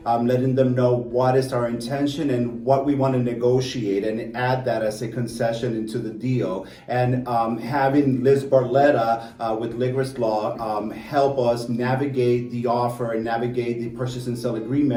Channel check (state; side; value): identical; both; correlation 1.00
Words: letting them know what is our intention and what we want to negotiate, and add that as a concession into the deal. And having Liz Barletta with Ligris Law help us navigate the offer and navigate the purchase and sale